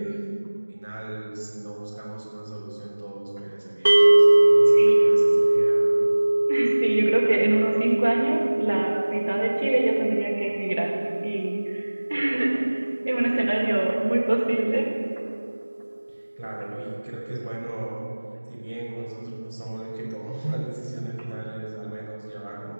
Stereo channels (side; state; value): both; inverted; correlation -1.00